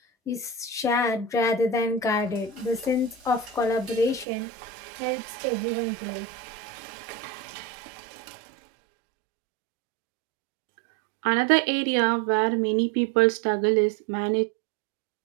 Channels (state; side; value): drops out; left; at 4.2 s